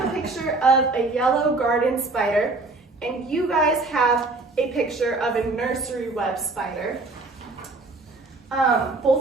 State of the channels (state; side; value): quieter; left; 3.4 dB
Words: a picture of a yellow garden spider, and you guys have a picture of a nursery web spider.